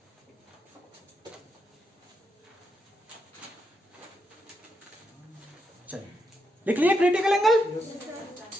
चलिए लिख लिए क्रिटिकल एंगल।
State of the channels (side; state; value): both; normal; correlation 0.82